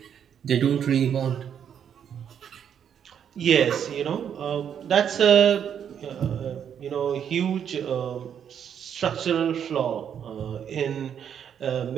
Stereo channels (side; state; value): left; quieter; 8.5 dB